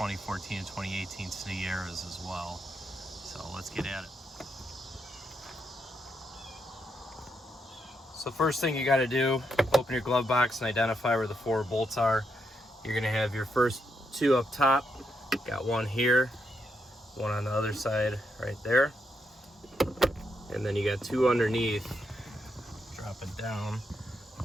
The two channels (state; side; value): normal; both; correlation 0.81